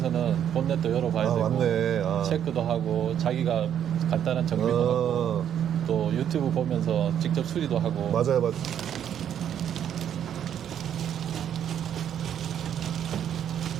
본넷도 열어봐야 되고 맞네. 체크도 하고 자기가 간단한 정비도 하고 또 유튜브 보면서 직접 수리도 하고 맞아요.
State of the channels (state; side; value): quieter; left; 9.5 dB